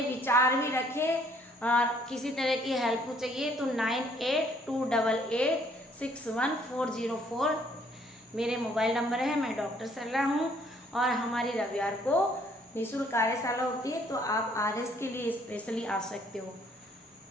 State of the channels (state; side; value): normal; both; correlation 0.63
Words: विचार भी रखें। और किसी तरह की हेल्प चाहिए तो 9828861404 मेरे मोबाइल नंबर है। मैं डॉक्टर सरला हूँ और हमारी रविवार को निःशुल्क कार्यशाला होती है, तो आप RS के लिए स्पेशली आ सकते हो।